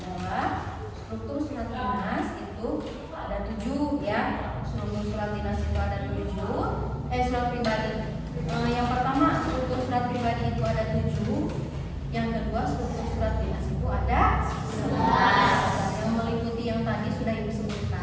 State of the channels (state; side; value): identical; both; correlation 1.00